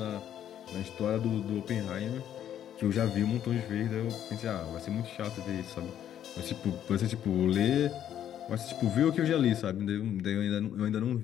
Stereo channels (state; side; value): quieter; right; 10.4 dB